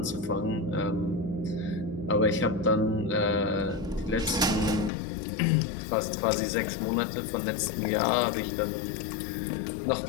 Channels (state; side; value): drops out; right; at 4.9 s